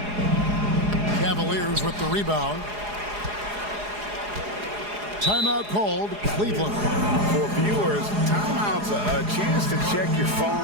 Cavaliers with the rebound. Timeout called, Cleveland. For viewers, timeout's a chance to check your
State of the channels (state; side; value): late; left; 4.8 ms